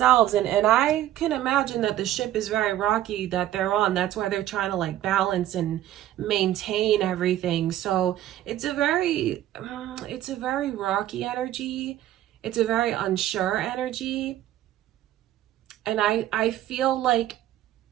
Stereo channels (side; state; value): left; quieter; 13.1 dB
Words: and I can imagine that the ship is very rocky that they're on. That's why they're trying to like balance and maintain everything. So it's a very rocky energy. It's a very unsure energy. And I feel like